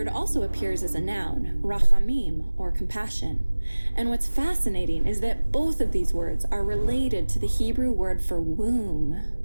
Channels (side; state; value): both; inverted; correlation -1.00